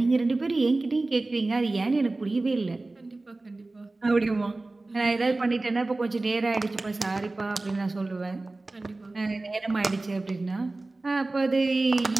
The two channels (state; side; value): quieter; left; 3.1 dB